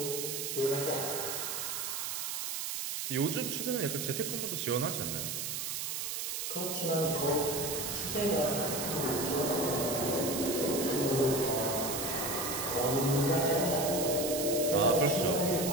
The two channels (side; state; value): right; noise; hiss, 3 dB below the sound